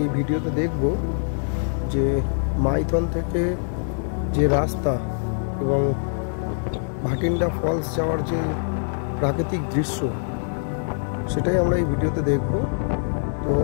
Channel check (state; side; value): silent; right; 63 dB below the other